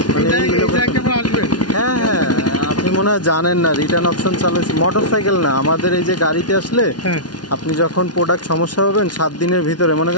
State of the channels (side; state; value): right; late; 0.69 ms